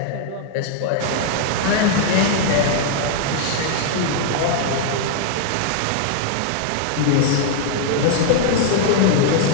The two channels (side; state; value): both; different; correlation 0.00